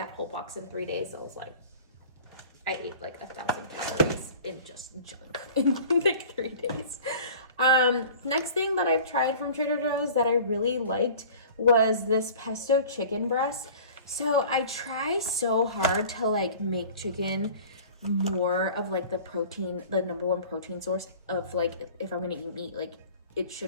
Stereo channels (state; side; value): inverted; both; correlation -0.43